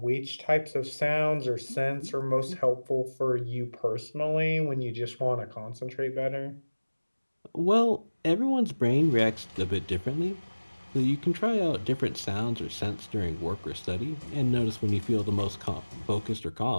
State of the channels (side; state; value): both; inverted; correlation -1.00